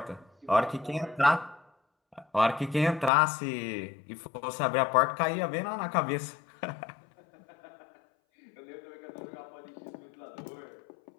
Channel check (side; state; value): right; drops out; at 3.1 s